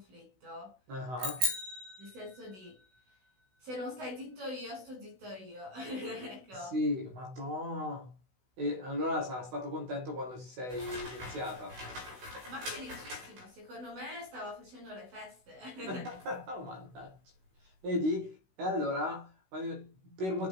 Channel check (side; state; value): left; late; 16 ms